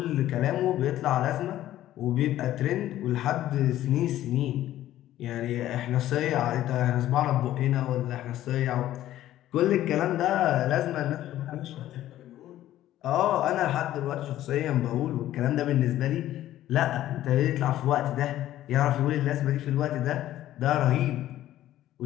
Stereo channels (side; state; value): right; quieter; 13.5 dB